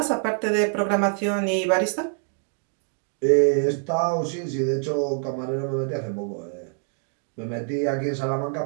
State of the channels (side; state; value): left; silent; 55 dB below the other